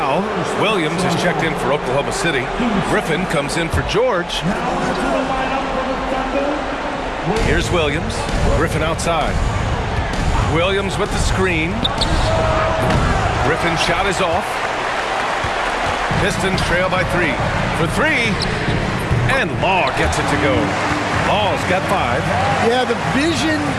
Williams is checked in for Oklahoma City. Griffin comes in for George. Here's Williams. Griffin outside. Williams with the screen. Griffin's shot is off. Pistons trail by 3. For 3. And Law gets it to go. Law's got 5. Yeah, the vision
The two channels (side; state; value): both; identical; correlation 1.00